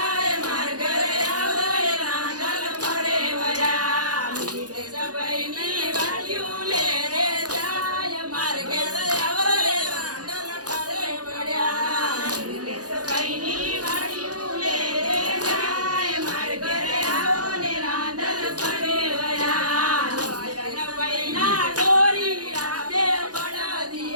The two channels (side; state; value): left; late; 0.68 ms